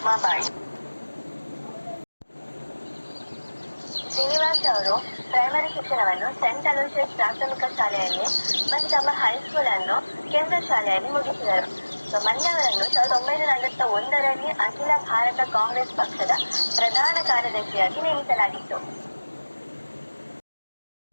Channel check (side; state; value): both; inverted; correlation -1.00